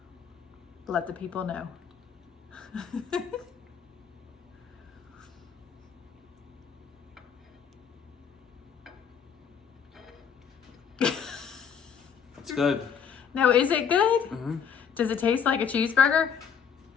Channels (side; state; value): right; quieter; 7.3 dB